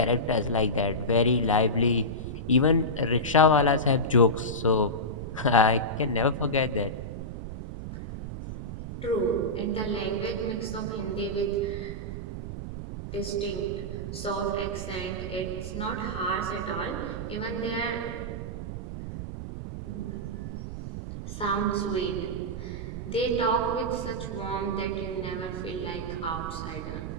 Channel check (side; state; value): right; noise; rumble, 7 dB below the sound